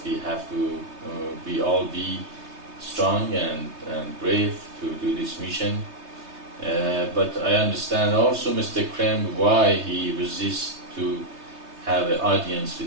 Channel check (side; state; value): left; late; 3.2 ms